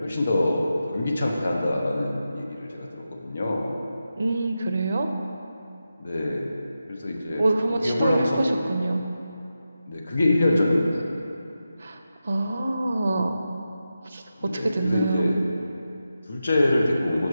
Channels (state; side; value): inverted; both; correlation -0.90